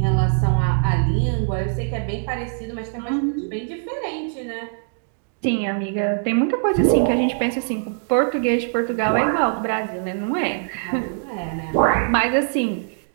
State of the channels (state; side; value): silent; left; digital silence